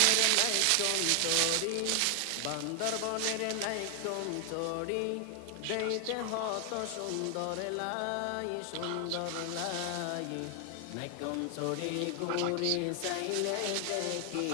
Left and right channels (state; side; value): different; both; correlation 0.00